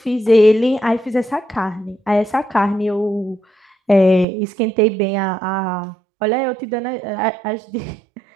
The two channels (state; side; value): drops out; left; at 4.2 s